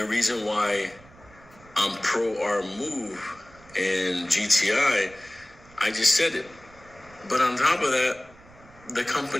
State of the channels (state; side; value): noise; right; rumble, 24 dB below the sound